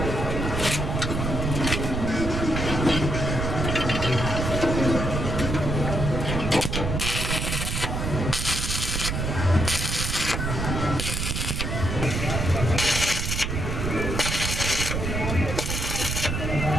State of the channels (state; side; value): noise; right; rumble, 2 dB below the sound